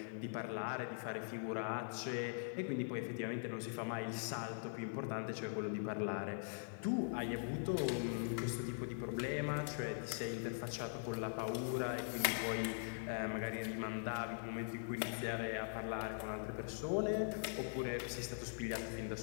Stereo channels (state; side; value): silent; right; digital silence